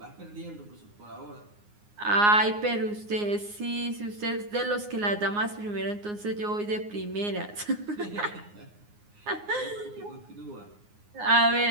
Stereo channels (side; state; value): left; late; 9.6 ms